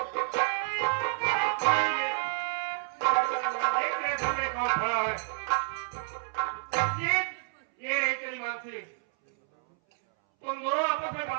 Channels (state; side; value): silent; left; 58 dB below the other